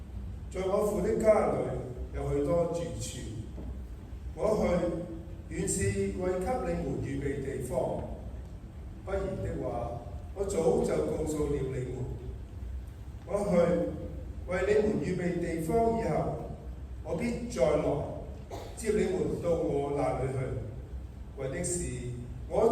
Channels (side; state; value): both; identical; correlation 1.00